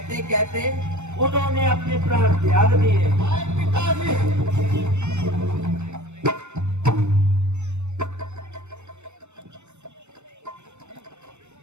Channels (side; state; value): left; late; 0.82 ms